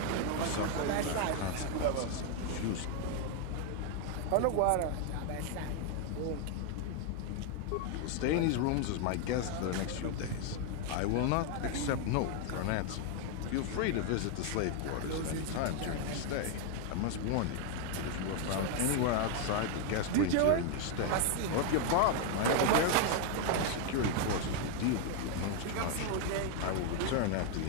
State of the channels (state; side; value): different; both; correlation 0.00